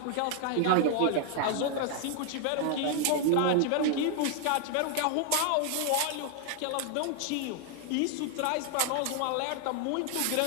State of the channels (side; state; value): both; different; correlation 0.00